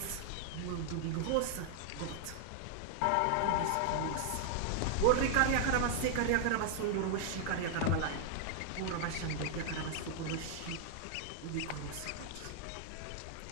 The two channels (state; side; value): different; both; correlation 0.00